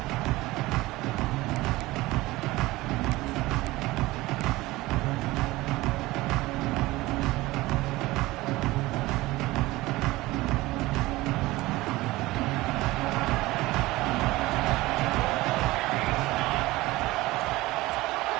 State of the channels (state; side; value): quieter; left; 19.3 dB